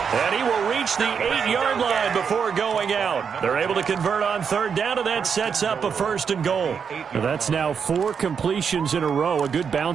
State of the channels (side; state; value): left; quieter; 6.6 dB